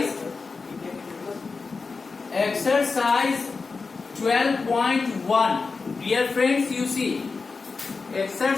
12.1. Dear friends, you see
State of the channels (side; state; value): right; quieter; 4.4 dB